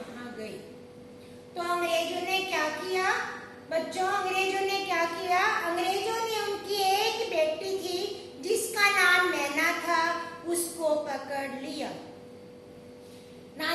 गए। तो अंग्रेजों ने क्या किया बच्चों? अंग्रेजों ने क्या किया? अंग्रेजों ने उनकी एक बेटी थी जिसका नाम मैना था, उसको पकड़ लिया।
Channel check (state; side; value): identical; both; correlation 1.00